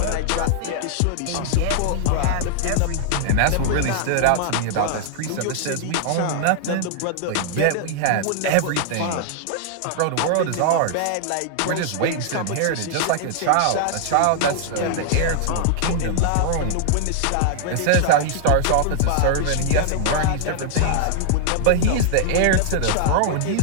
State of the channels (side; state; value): both; different; correlation -0.01